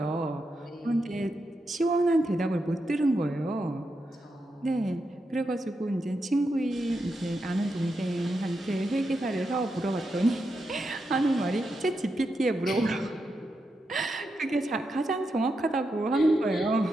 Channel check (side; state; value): both; normal; correlation 0.85